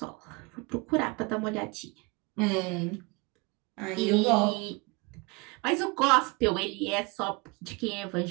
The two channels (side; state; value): left; quieter; 27.7 dB